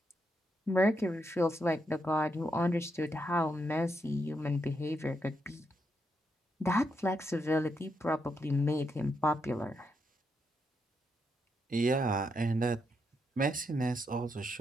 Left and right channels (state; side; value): normal; both; correlation 0.81